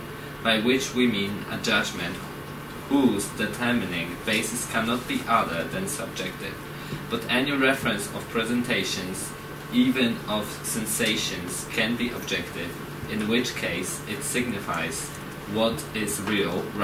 by which we mean a judgment whose determining basis cannot be other than subjective. But any reference of presentations, even of sensations, can be objective, in which case it signifies what is real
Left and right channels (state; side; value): identical; both; correlation 1.00